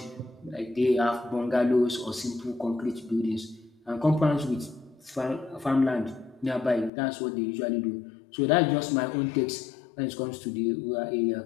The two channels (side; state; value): right; drops out; at 6.9 s